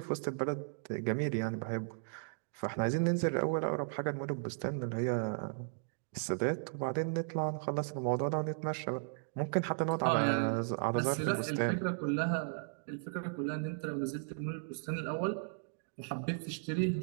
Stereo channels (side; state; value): left; silent; digital silence